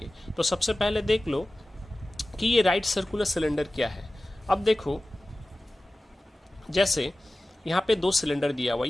तो सबसे पहले देख लो कि ये राइट सर्कुलर सिलेंडर क्या है। अब देखो, जैसे यहाँ पे दो सिलेंडर दिया हुआ,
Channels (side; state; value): both; normal; correlation 0.96